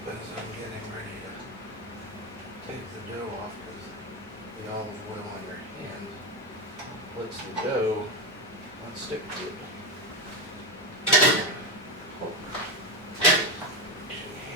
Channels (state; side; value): normal; both; correlation 0.12